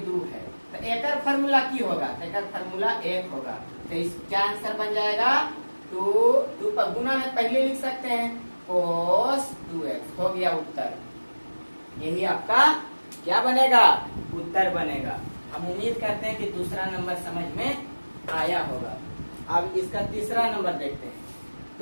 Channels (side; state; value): both; inverted; correlation -1.00